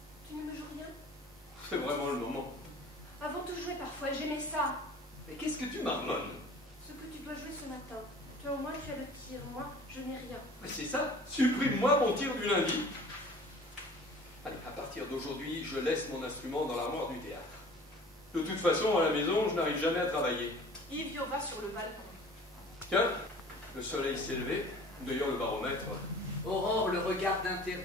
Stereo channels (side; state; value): both; normal; correlation 0.46